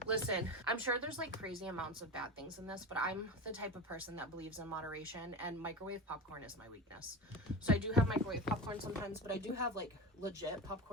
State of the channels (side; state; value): both; normal; correlation 0.27